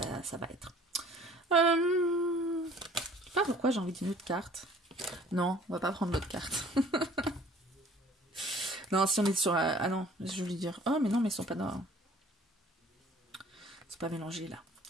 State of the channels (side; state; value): both; normal; correlation 0.53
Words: va être. Je sais pas pourquoi j'ai envie d'une autre carte. Non, on va pas prendre l'autre carte. Non, si on est sur... ah non, je voulais dire... Oh, mais non, mais ils sont pas dans... C'est pas mélangé, là.